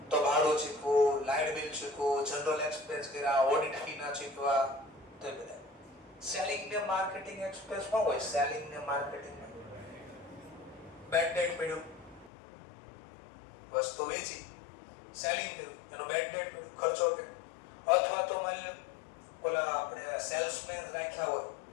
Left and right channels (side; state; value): right; drops out; at 12.3 s